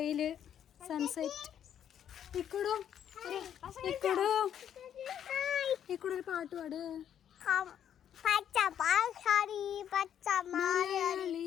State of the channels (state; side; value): quieter; right; 9.5 dB